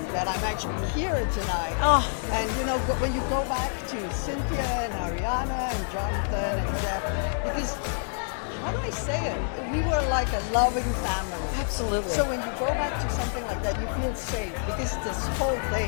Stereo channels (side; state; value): right; silent; 60 dB below the other